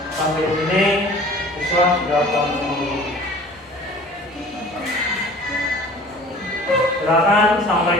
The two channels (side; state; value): both; normal; correlation 0.46